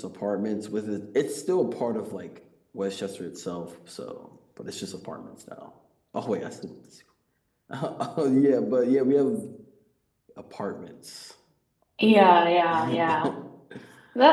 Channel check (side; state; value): both; identical; correlation 1.00